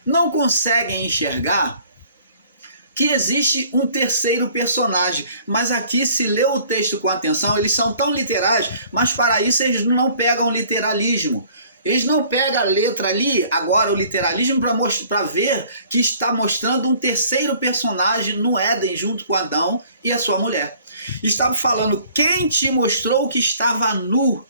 não conseguem enxergar que existe um terceiro personagem. Mas aqui, se ler o texto com atenção, eles são tão literais, mas para isso eles não pegam literalismo. Eles não pegam a letra ali, agora o literalismo, para ver que está mostrando um terceiro personagem no Éden, junto com Adão e a sua mulher. Estava falando: quem te mostrou que estava nu?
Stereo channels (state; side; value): inverted; both; correlation -0.55